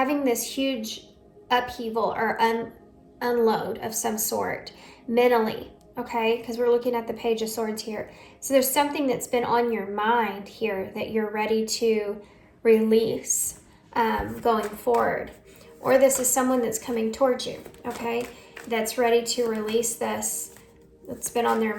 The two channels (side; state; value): both; identical; correlation 1.00